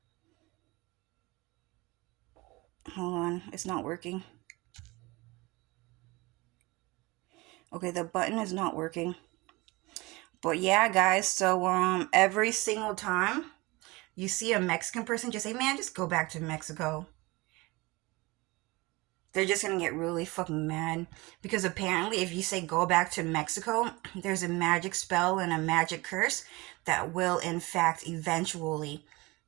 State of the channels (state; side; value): quieter; left; 23.2 dB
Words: Hold on, it's not working. Okay, the button is not working. But yeah, guys, so every single time you see a Mexican person, just say, man, just go back to Mexico. They're just gonna get really fucking mad. Because apparently, if you say go back to Mexico, there's a magic spell and a magic curse that will, in fact, eventually